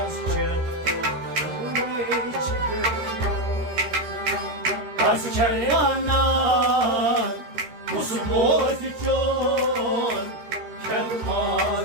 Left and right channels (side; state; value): left; late; 13 ms